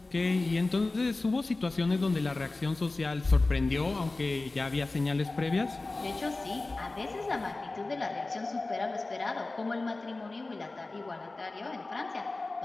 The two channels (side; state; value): right; quieter; 3.3 dB